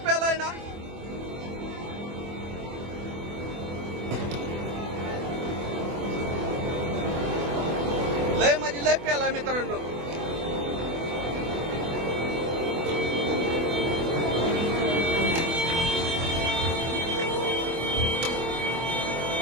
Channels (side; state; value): left; late; 24 ms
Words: प्यालाय ना. लय म्हणजे लय प्यालाय मित्रांनो.